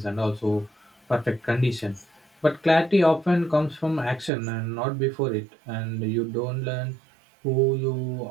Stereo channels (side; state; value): left; drops out; at 4.3 s